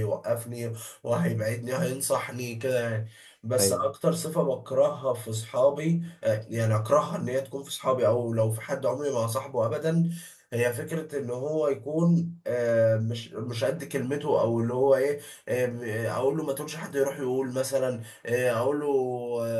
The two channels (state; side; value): identical; both; correlation 1.00